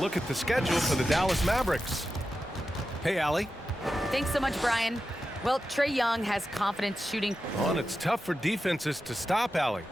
at the schedule for the Dallas Mavericks. Hey, Allie. Thanks so much, Brian. Well, Trae Young has confidence shooting. Oh, and it's tough for defenses to stop, Allie.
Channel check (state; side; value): normal; both; correlation 0.91